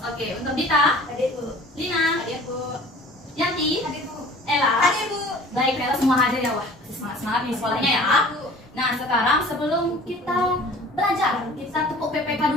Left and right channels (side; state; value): both; normal; correlation 0.46